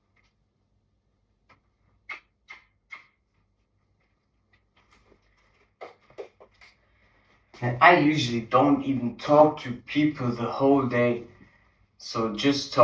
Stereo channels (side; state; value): both; identical; correlation 1.00